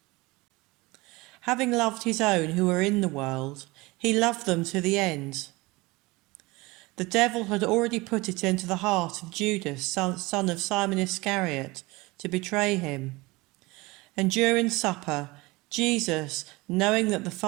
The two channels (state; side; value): quieter; left; 22.7 dB